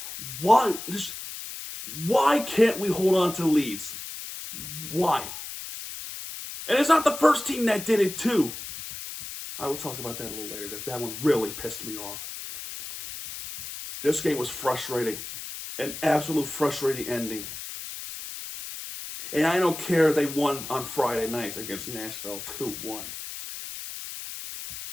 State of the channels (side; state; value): left; noise; hiss, 9 dB below the sound